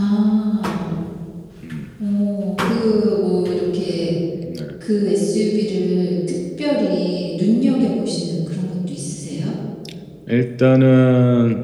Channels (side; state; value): both; identical; correlation 1.00